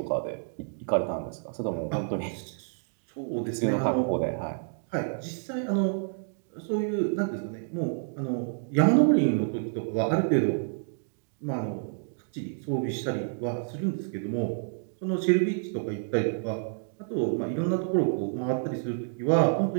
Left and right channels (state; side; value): silent; left; digital silence